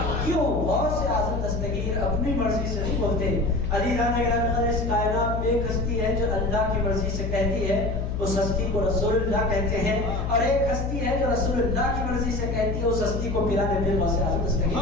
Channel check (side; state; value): left; noise; hum, 3 dB below the sound